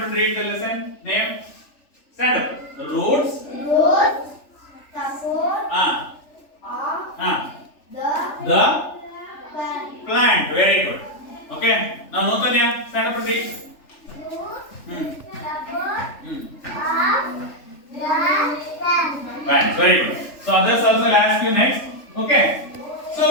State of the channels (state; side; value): late; right; 3.4 ms